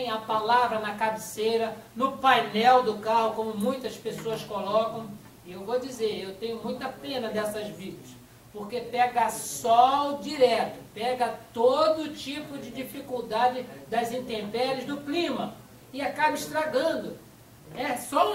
a palavra na cabeceira, no painel do carro, como muitas pessoas colocam. E eu vou dizer, eu tenho muita pena dessas Bíblias, porque pega sol direto, pega todo tipo de dificuldade das intempéries do clima e acaba estragando. É só um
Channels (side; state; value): both; identical; correlation 1.00